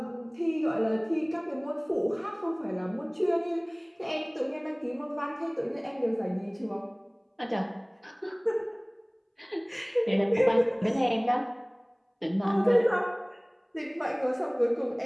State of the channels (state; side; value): identical; both; correlation 1.00